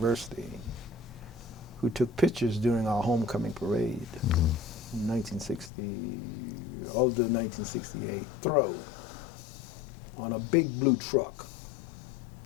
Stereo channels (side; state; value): right; drops out; at 5.7 s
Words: who took pictures during our homecoming parade in 1960, of the 1968 throw on a big blue truck.